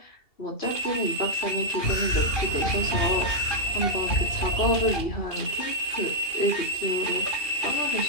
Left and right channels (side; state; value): right; late; 2.7 ms